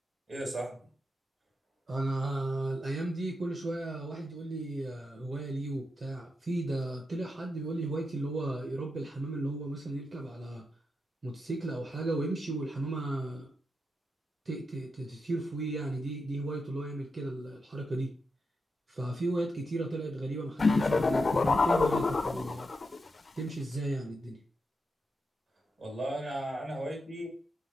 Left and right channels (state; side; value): normal; both; correlation 0.86